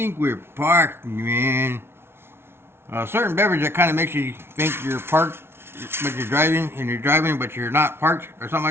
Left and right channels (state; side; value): late; left; 0.12 ms